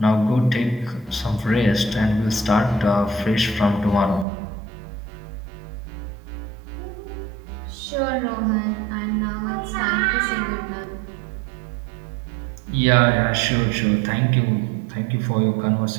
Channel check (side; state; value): left; drops out; at 4.2 s